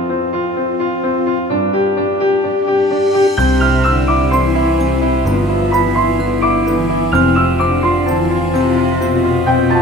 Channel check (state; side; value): normal; both; correlation 0.53